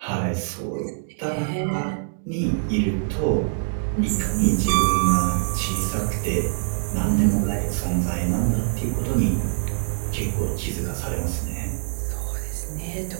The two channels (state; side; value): silent; left; digital silence